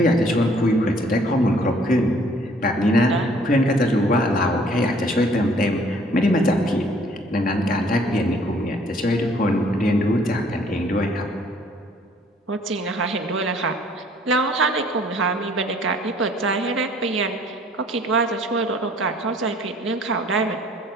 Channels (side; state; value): both; normal; correlation 0.59